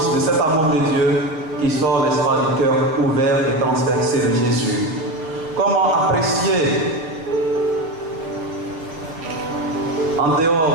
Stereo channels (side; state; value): left; late; 6.6 ms